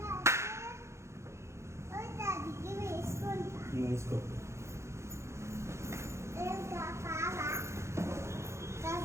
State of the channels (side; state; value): left; late; 0.14 ms